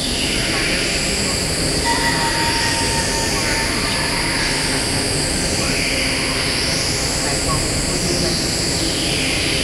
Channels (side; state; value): both; identical; correlation 1.00